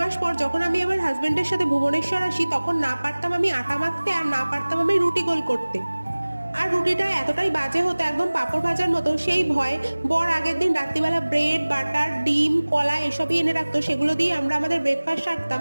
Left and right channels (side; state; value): both; inverted; correlation -1.00